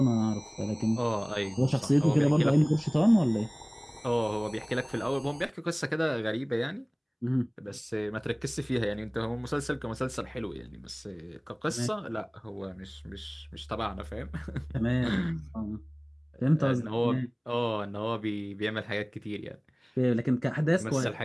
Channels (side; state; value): both; identical; correlation 1.00